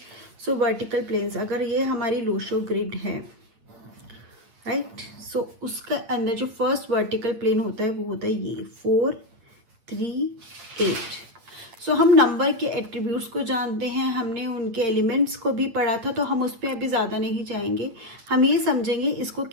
So vertical planes, अगर ये हमारी लोशो ग्रिड है, राइट, सो उसके अंदर जो फर्स्ट वर्टिकल प्लेन होता है वो होता है ये 4, 3, 8। सो हम नंबर के एट्रीब्यूट्स को जानते हैं, हमने उनके एलिमेंट्स को भी पढ़ा था, तो हम उस पर अभी ज़्यादा नहीं जाएंगे। हम ये समझेंगे इसको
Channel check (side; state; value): left; late; 8.9 ms